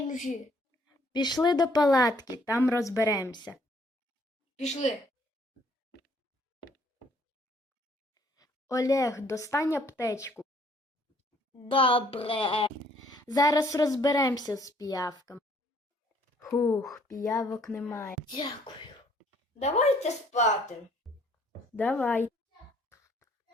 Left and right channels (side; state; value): both; normal; correlation 0.62